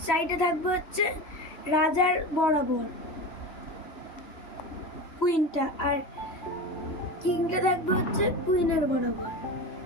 সাইডে থাকবে হচ্ছে রাজার বরাবর কুইনটা, আর কিংটা থাকবে হচ্ছে কুইনের বরাবর।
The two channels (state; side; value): late; right; 3.1 ms